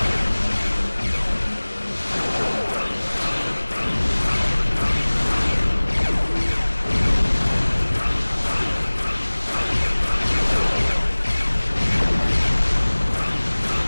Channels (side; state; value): both; inverted; correlation -1.00